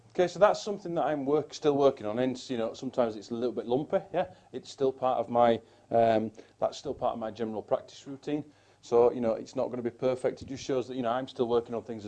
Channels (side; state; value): both; identical; correlation 1.00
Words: Okay, so that's something that I'm still working on. And sometimes it's a little bit lumpy. Yeah, it's still part of my that's still part of my general practice routine. So it's not going to be perfect. It just shows that I'm still working on things